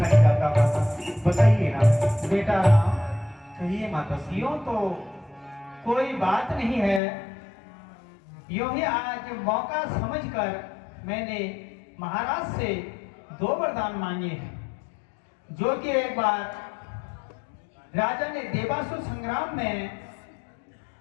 नहीं जाता माता, बताइए ना। बेटा राम, कहिए माता श्री। यूं तो कोई बात नहीं है, यूं ही आज मौका समझकर मैंने महाराज से 2 वरदान मांगे हैं, जो कि एक बार राजा ने देवासुर संग्राम में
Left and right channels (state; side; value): drops out; right; at 7.0 s